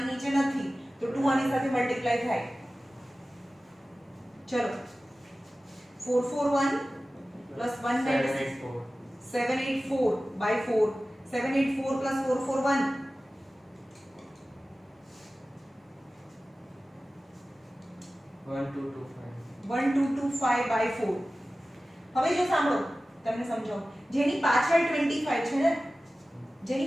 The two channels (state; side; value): normal; both; correlation 0.96